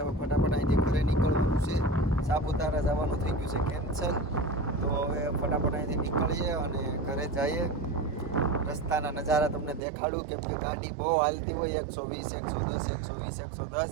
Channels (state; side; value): drops out; left; at 9.8 s